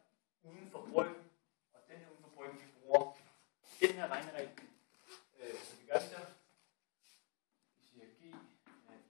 uden for bryggen, og den her uden for bryggen, vi bruger den her regneregel. Så vi gør det så. Vi siger g af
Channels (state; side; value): quieter; right; 35.8 dB